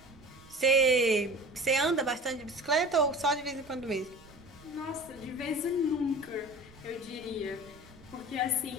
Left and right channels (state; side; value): noise; right; rumble, 23 dB below the sound